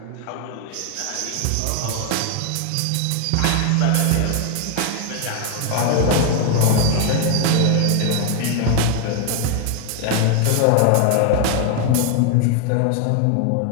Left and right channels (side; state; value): both; different; correlation 0.01